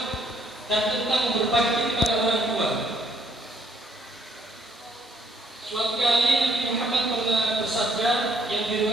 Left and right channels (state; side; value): normal; both; correlation 0.67